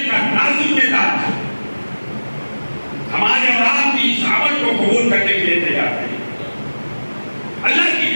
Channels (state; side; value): inverted; both; correlation -1.00